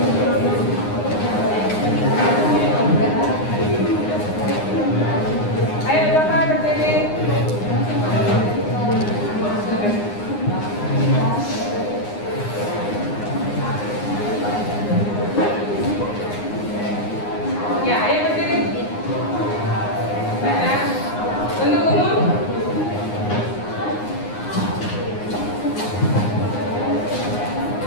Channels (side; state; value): right; late; 9.7 ms